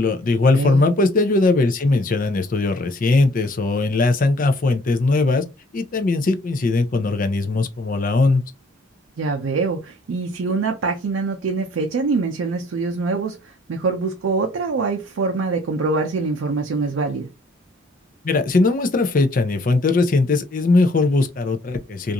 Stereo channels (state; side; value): normal; both; correlation 0.60